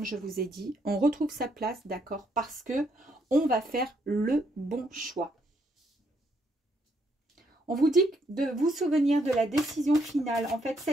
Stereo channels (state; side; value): normal; both; correlation 0.73